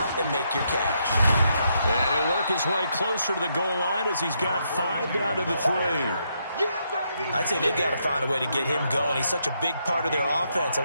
and make your cash. And he'll work his way closer to the goal line as he's got 5 down to the 3. I'd say they've got to find a way to get him going. He's such a big part of their offense.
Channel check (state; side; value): inverted; both; correlation -0.78